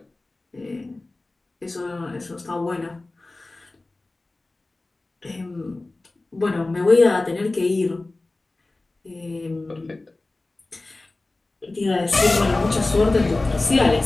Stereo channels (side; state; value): right; quieter; 3.1 dB